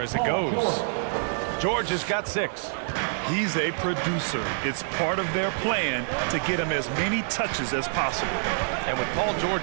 as it goes. George has got 6. He's a producer. It's part of their plan to get him as many touches as possible. And with Paul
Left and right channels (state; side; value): silent; left; digital silence